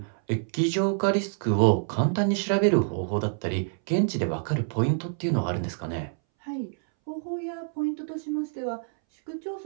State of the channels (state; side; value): silent; left; 60 dB below the other